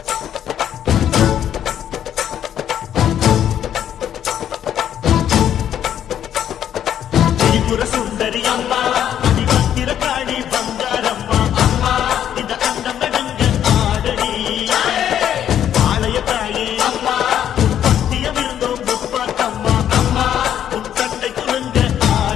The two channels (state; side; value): quieter; right; 10.1 dB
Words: சுந்தரி அம்மா அதிபத்திர காளி